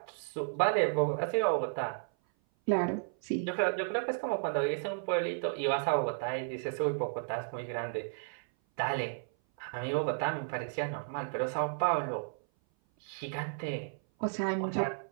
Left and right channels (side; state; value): left; silent; 56 dB below the other